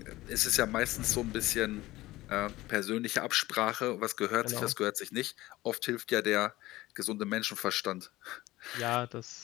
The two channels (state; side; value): quieter; right; 17.8 dB